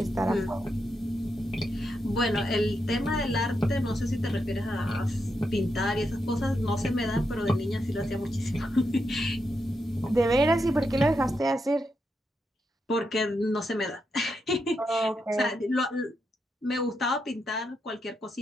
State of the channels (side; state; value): both; normal; correlation 0.83